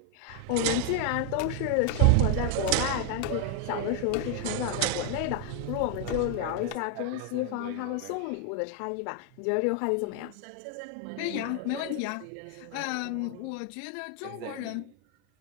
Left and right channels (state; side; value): different; both; correlation 0.00